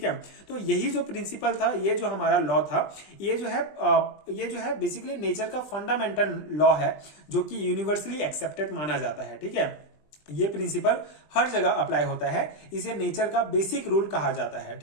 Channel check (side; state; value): right; late; 20 ms